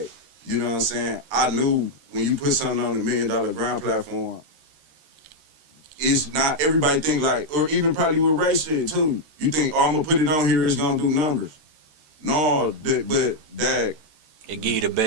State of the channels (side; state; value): left; late; 13 ms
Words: you know what I'm saying? I knew when you put something on the $1 Million Grind platform, it's not everybody think like, or even probably with Ray shit too. You think, oh, I'm gonna put it on here, it's gonna do numbers. No, but that it give you the